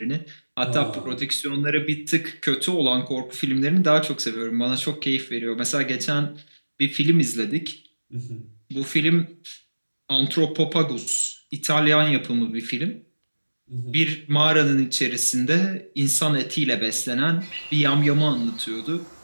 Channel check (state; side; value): inverted; both; correlation -1.00